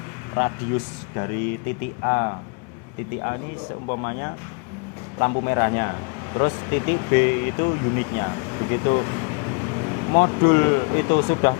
radius dari titik A ini seumpamanya lampu merahnya, terus titik B itu unitnya. Begitu modul itu sudah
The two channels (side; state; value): right; quieter; 35.2 dB